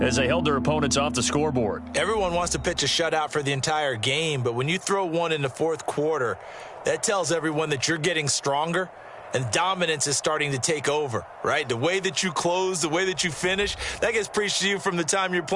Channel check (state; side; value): identical; both; correlation 1.00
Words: as they held their opponents off the scoreboard. Everyone wants to pitch a shutout for the entire game, but when you throw one in the fourth quarter, that tells everyone that you're getting stronger and dominance is starting to take over, right? The way that you close, the way that you finish, that gets preached to you from the time you're